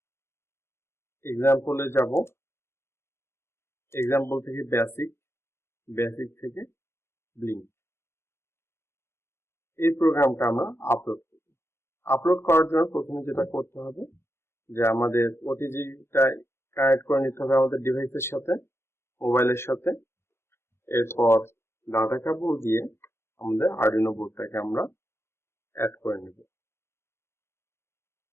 এক্সাম্পলে যাব, এক্সাম্পল থেকে বেসিক, বেসিক থেকে ব্লিঙ্ক। এই প্রোগ্রামটা আমরা আপলোড করব। আপলোড করার জন্য প্রথমে যেটা করতে হবে যে আমাদের ওটিজিটা কানেক্ট করে নিতে হবে আমাদের ডিভাইসের সাথে, মোবাইলের সাথে। এরপর ডাটা কেবল দিয়ে আমাদের আরডুইনো বোর্ডটাকে আমরা অ্যাড করে নেব।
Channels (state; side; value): late; right; 0.12 ms